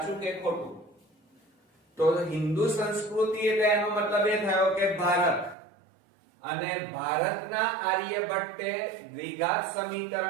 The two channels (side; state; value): left; drops out; at 5.6 s